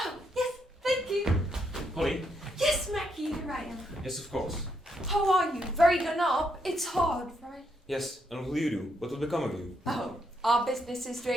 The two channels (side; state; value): both; normal; correlation 0.77